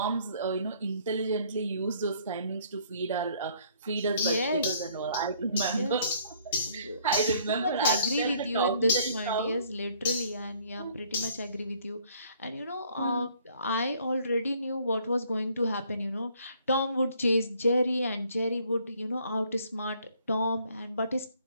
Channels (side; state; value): both; inverted; correlation -0.62